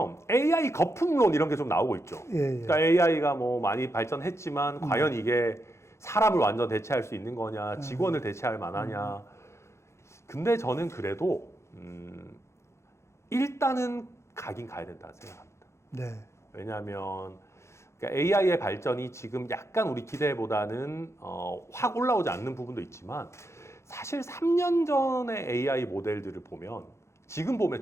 AI 거품론 이런 게 좀 나오고 있죠. 예. 그러니까 AI가 뭐 많이 발전했지만 과연 이게 사람을 완전 대체할 수 있는 거냐, 직원을 대체할 만하냐. 근데 저는 그래도 일단은 가긴 가야 된다 생각합니다. 네. 왜냐하면 그러니까 AI의 발전이 지금 약간 우리 기대보다는 확 올라오지 않는 부분도 있지만 사실 3년 전의 AI 모델들을 보면 지금 보면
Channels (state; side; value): late; right; 0.13 ms